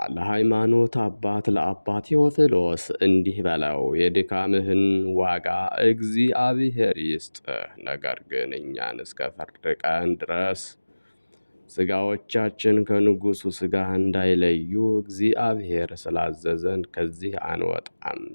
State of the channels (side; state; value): both; inverted; correlation -1.00